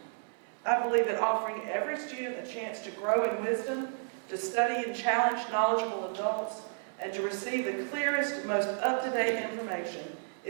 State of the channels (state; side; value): silent; left; 56 dB below the other